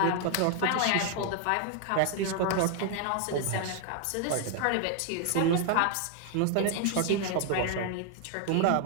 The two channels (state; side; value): different; both; correlation 0.00